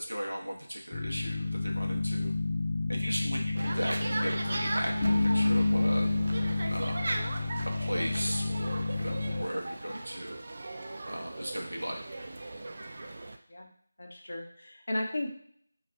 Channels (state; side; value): inverted; both; correlation -0.97